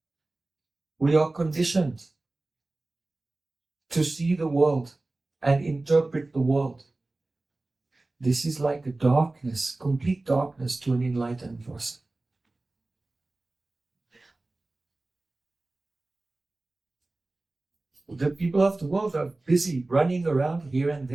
we are conditioned to see the world and interpret the world. This is like a darkness, complete darkness to an enlightened person. The people of the world are busy running around here and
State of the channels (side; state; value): left; quieter; 3.0 dB